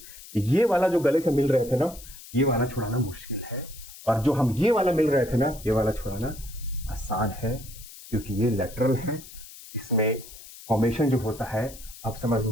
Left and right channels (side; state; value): left; noise; hiss, 17 dB below the sound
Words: ये वाला जो गले से मिल रहे थे ना, ये वाला छुड़ाना मुश्किल है। और जो हम ये वाला मिल रहे थे ना, ये वाला छुड़ाना आसान है, क्योंकि ये लेटरल है। इसमें फॉर्मेशन जो होता है, अब समझ